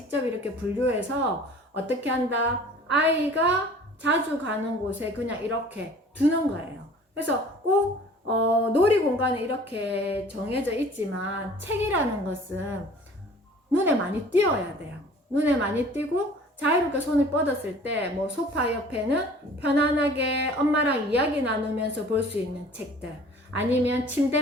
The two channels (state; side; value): normal; both; correlation 0.48